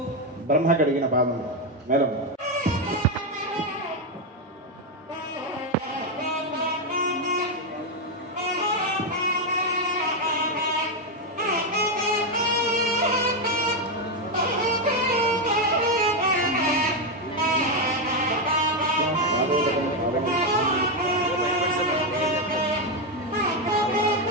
ब्रह्म कडिगिन पादं मेलं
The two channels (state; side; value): normal; both; correlation 0.06